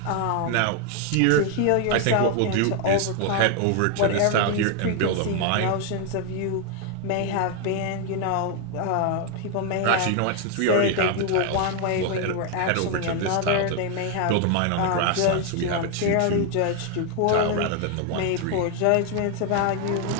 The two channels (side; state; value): both; different; correlation 0.01